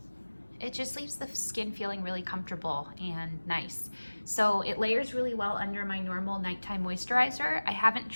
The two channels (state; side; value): inverted; both; correlation -1.00